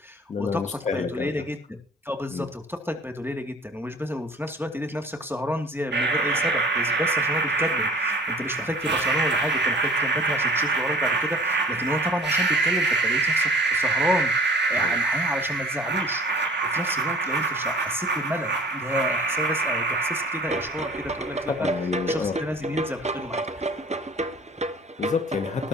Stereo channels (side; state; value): both; normal; correlation 0.47